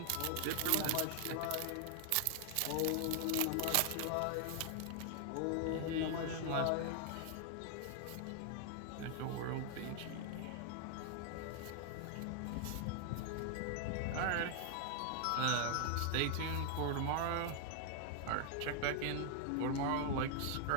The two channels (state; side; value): different; both; correlation 0.00